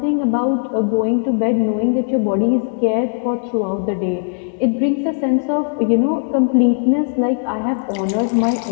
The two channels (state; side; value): silent; right; 67 dB below the other